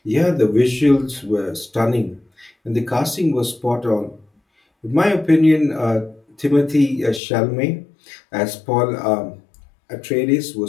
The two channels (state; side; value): drops out; right; at 7.2 s